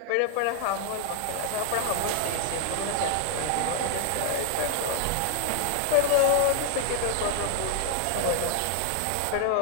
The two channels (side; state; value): both; different; correlation 0.00